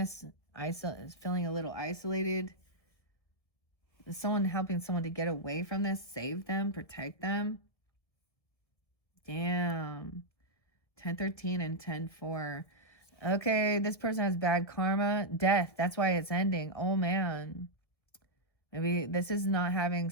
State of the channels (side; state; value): right; late; 1.7 ms